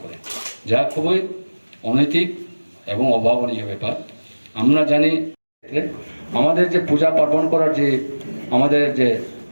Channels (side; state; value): both; inverted; correlation -1.00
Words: করে, যা খুবই অনৈতিক এবং অভাবনীয় ব্যাপার। আমরা জানি আমাদের যে পূজা পার্বণ করার যে আমাদের যে